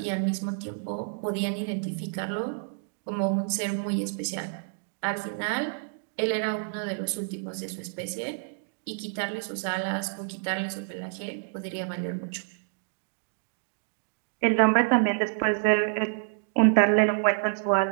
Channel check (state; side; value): silent; left; digital silence